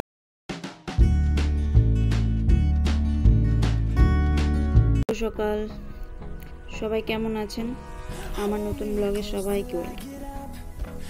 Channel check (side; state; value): both; identical; correlation 1.00